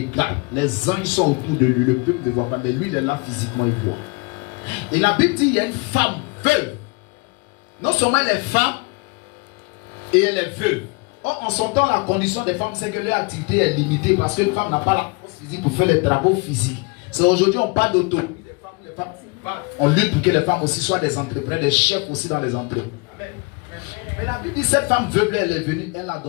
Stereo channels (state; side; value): quieter; right; 29.0 dB